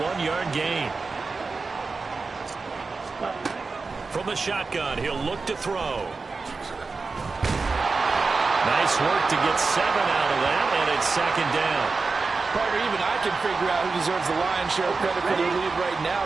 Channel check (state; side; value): quieter; left; 4.2 dB